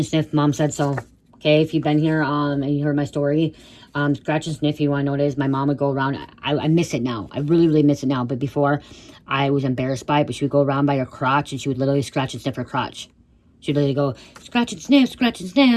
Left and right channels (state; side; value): identical; both; correlation 1.00